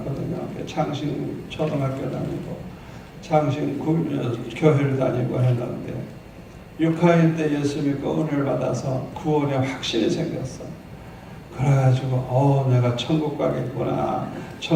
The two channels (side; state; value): both; identical; correlation 1.00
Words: 장신 초등학교 다니고 장신 교회를 다니고 했는데 6학년 때 예수 믿고 은혜를 받아서 구원의 확신이 생겼어. 그래가지고 내가 천국 가겠구나.